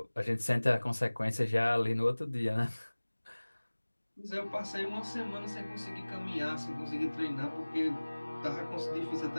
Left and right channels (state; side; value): inverted; both; correlation -1.00